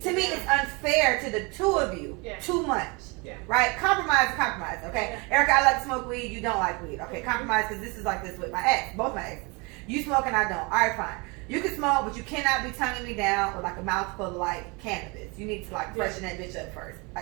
to me, it's unfair to the two of you. Yeah. Too much. Yeah. Right? Compromise, okay? Yeah. Erica, I like to smoke weed. You don't like weed. Okay, compromise, because this is like this with my ex. Both my exes. You smoke and I don't. All right, fine. You can smoke, but you cannot be tonguing me down with like a mouthful of like cannabis. You need to like freshen that bitch up first.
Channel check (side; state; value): left; quieter; 28.6 dB